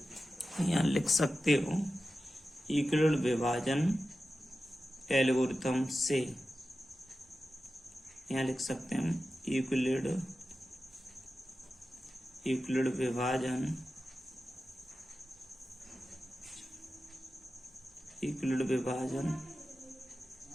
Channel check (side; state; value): both; normal; correlation 0.93